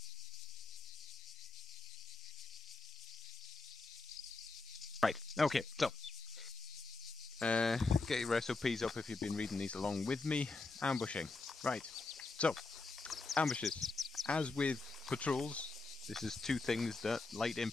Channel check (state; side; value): quieter; right; 3.8 dB